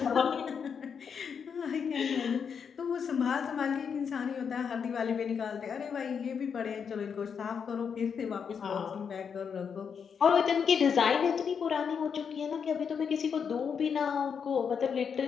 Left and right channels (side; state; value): right; quieter; 6.7 dB